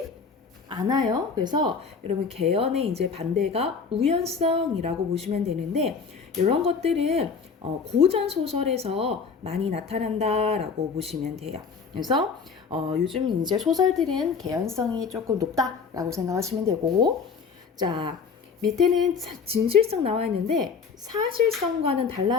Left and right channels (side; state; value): right; quieter; 5.6 dB